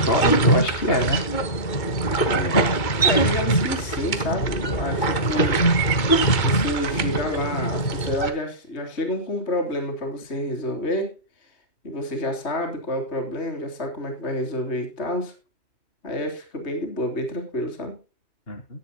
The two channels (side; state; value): right; late; 2.3 ms